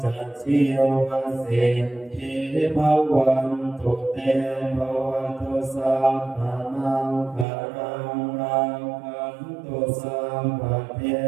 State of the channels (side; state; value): left; drops out; at 7.5 s